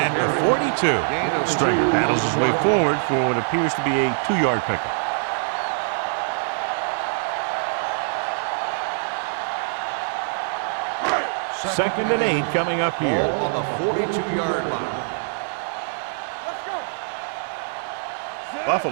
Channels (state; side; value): silent; left; digital silence